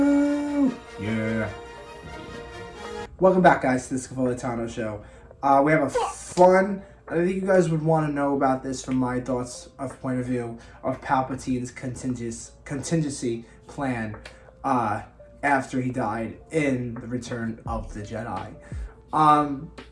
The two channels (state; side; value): identical; both; correlation 1.00